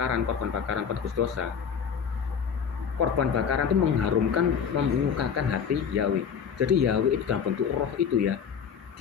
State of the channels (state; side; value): quieter; right; 7.2 dB